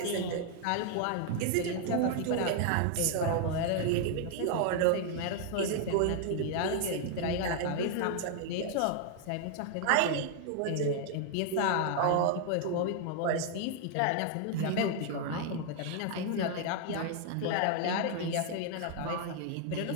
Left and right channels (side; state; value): both; different; correlation 0.00